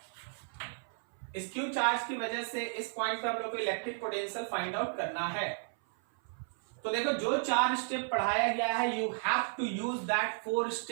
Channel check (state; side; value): silent; left; 55 dB below the other